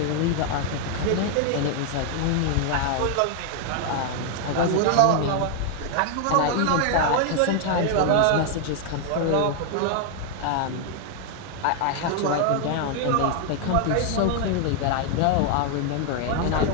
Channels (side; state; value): both; different; correlation 0.00